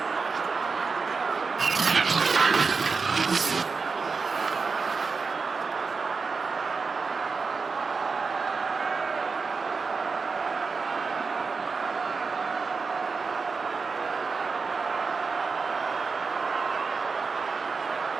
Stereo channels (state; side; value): quieter; left; 4.7 dB